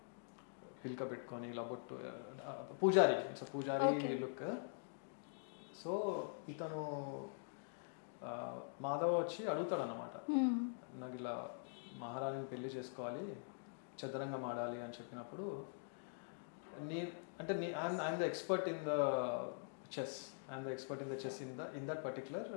పిల్క పెట్టుకొని ఇలా బొట్టు, పూజారి, ఇట్స్ పూజారి లుక్. సో ఇతను మాధవ వచ్చి అడుగుతాడు అన్నమాట, నాకు ఇలా మహారాణిని పెళ్లి చేసుకోవాలి, చదరంగం ఆడాలి అని చెప్పినప్పుడు I'm the expert in the chess in that particular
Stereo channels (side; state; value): right; silent; digital silence